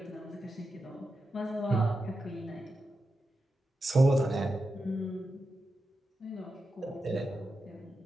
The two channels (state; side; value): normal; both; correlation 0.90